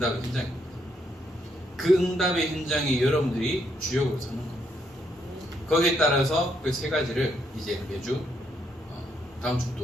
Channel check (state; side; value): normal; both; correlation 0.75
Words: 현장입니다. 그 응답의 현장에 여러분들이 주역으로 서는 겁니다. 거기에 따라서 그 세 가지를 이제 매주 다음